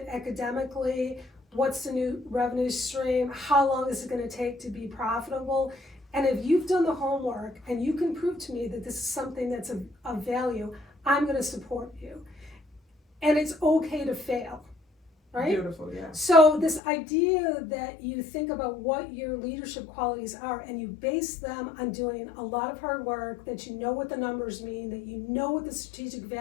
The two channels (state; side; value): drops out; right; at 16.8 s